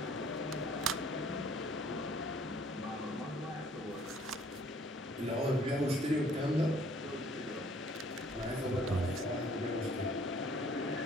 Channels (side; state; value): both; normal; correlation 0.58